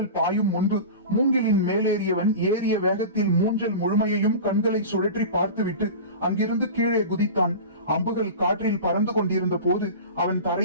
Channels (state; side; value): inverted; both; correlation -0.31